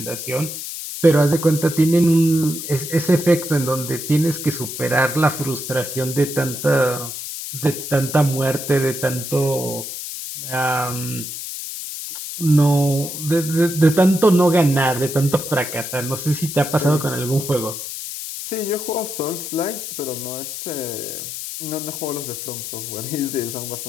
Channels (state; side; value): noise; left; hiss, 7 dB below the sound